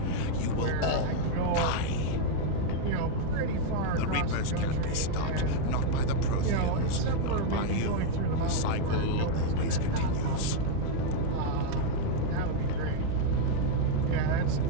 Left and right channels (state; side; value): different; both; correlation 0.00